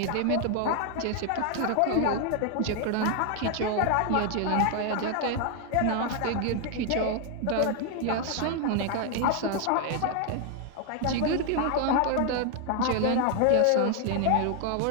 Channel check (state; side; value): different; both; correlation 0.00